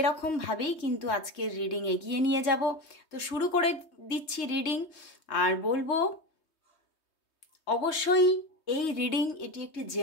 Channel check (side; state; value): right; late; 3.2 ms